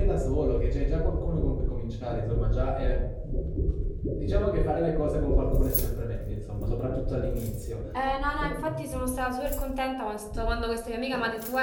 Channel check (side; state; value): both; identical; correlation 1.00